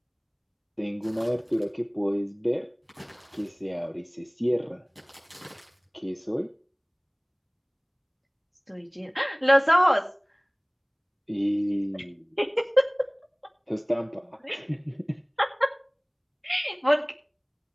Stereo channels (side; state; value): both; identical; correlation 1.00